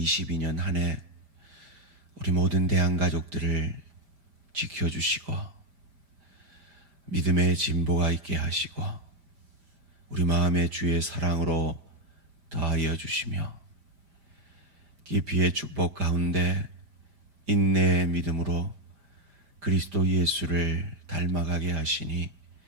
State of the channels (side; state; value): left; late; 5.0 ms